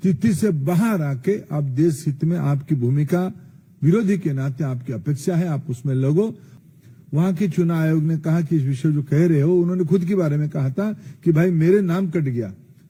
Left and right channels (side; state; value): both; identical; correlation 1.00